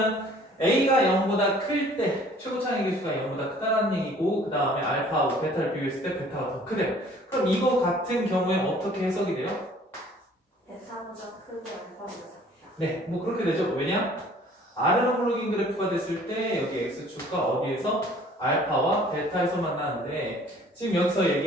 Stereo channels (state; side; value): normal; both; correlation 0.54